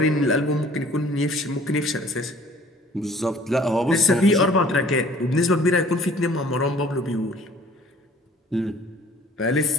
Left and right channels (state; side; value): normal; both; correlation 0.53